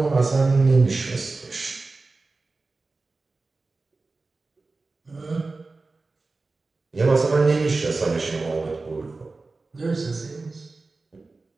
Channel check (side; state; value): left; quieter; 3.6 dB